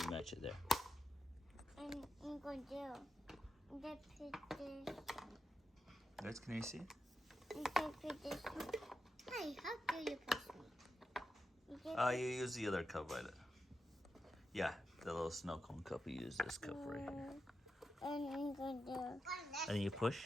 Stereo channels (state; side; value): normal; both; correlation 0.89